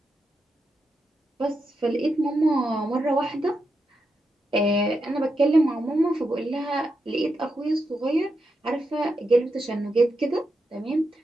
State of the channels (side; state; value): both; normal; correlation 0.85